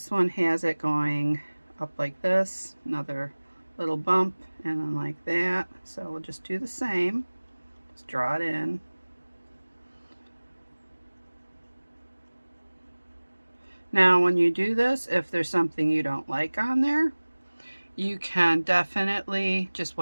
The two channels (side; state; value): both; inverted; correlation -1.00